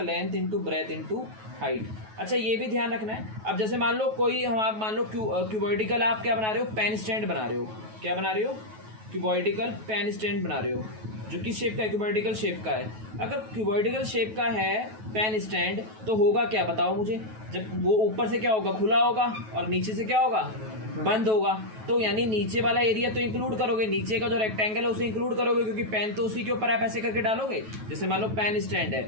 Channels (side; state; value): left; late; 9.3 ms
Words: into breadth into height. अच्छा ये भी ध्यान रखना है, अब जैसे मान लो कोई हम आप मान लो क्यूबॉइडिकल आप क्या बना रहे हो, पेन स्टैंड बना रहे हो, क्या बना रहे हो, क्यूबॉइडिकल पेन स्टैंड बना रहे हो, जो किस शेप का है, क्यूबॉइडिकल शेप का है। अगर क्यूबॉइडिकल शेप का है पेन स्टैंड तो होगा क्या बताओ मुझे, जब वो ऊपर से क्या होगा, खुला होगा, और नीचे से क्या होगा, बंद होगा। तो यानी नीचे वाला एरिया तो इंक्लूड करोगे, नीचे का जो रेक्टेंगल है उसे इंक्लूड करोगे, क्योंकि पेन तो उसी के ऊपर आप ऐसे करके डालोगे। जैसे मान लो पेन स्टैंड है